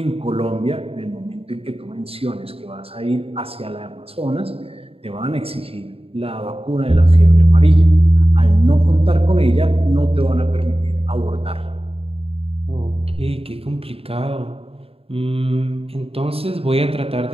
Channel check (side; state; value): left; late; 0.28 ms